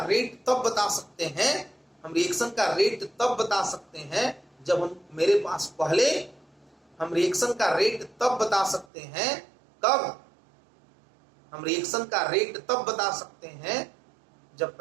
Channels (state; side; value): drops out; left; at 8.8 s